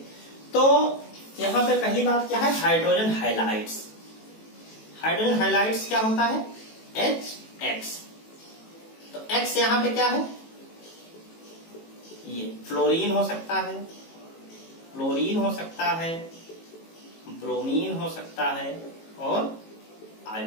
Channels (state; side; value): late; right; 18 ms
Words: तो यहाँ पे पहली बात क्या है? Hydrogen halides. हाइड्रोजन हैलाइड्स क्या होता है? HX। तो X यहां पे क्या है? ये फ्लोरीन हो सकता है, क्लोरीन हो सकता है, ब्रोमीन हो सकता है और